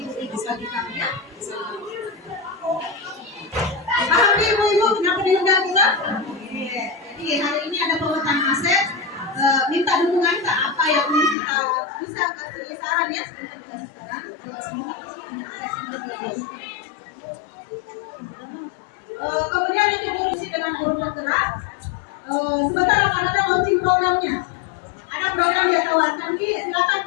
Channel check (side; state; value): right; drops out; at 11.4 s